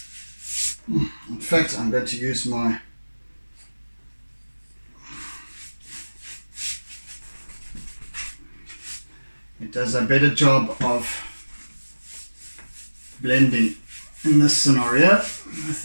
In fact, I'm going to use my it does a better job of blending in this scenario with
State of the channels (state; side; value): inverted; both; correlation -1.00